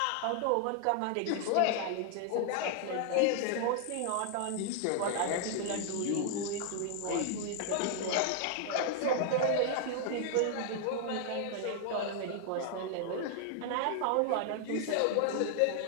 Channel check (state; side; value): different; both; correlation 0.00